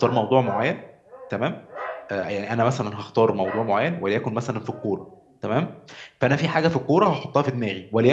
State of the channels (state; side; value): identical; both; correlation 1.00